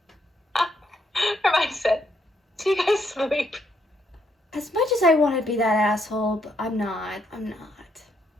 Her mindset. Do you guys sleep? As much as I want to be that asshole, but I'm not. I'm not.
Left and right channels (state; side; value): normal; both; correlation 0.74